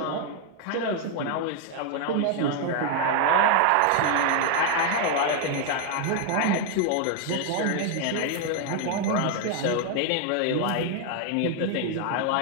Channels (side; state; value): both; different; correlation 0.01